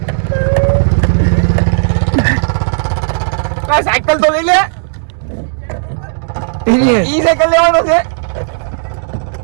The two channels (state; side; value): silent; left; digital silence